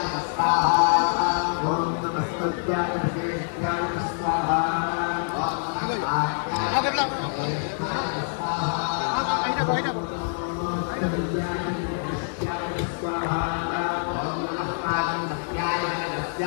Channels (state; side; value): silent; right; 61 dB below the other